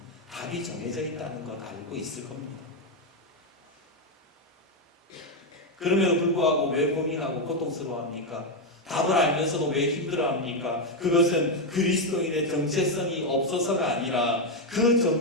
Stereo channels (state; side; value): normal; both; correlation 0.04